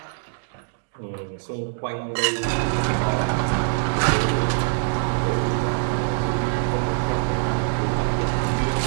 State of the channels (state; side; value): silent; left; digital silence